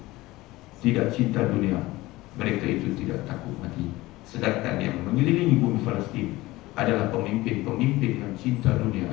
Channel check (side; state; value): right; quieter; 19.1 dB